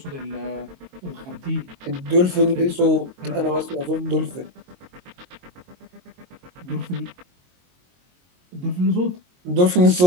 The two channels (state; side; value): late; left; 22 ms